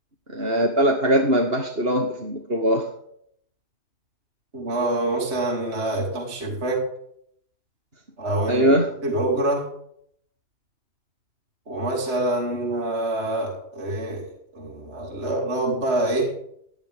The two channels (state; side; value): late; left; 3.1 ms